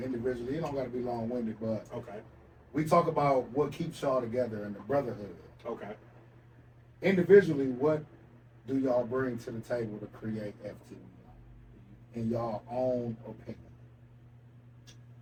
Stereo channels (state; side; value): identical; both; correlation 1.00